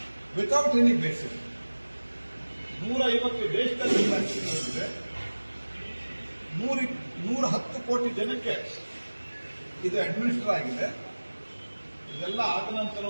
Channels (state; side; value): inverted; both; correlation -1.00